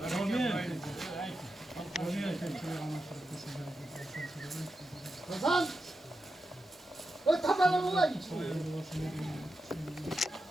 Hasan! O tabanı mı var içinde?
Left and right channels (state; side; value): normal; both; correlation 0.89